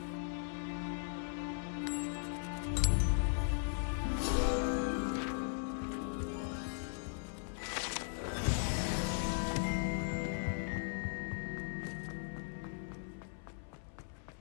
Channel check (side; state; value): right; silent; 52 dB below the other